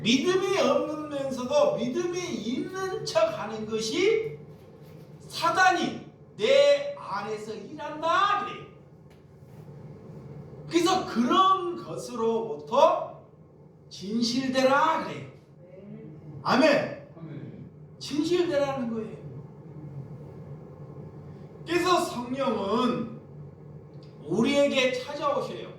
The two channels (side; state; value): both; identical; correlation 1.00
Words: 믿음이 없으면서도 믿음이 있는 척 하는 것이 사단이 내 안에서 일한다 그래요. 그래서 그런 것으로부터 진실되라 그래요. 아멘. 진실되라는 거예요. 그래서 성령은 우리에게 찾아오셔요.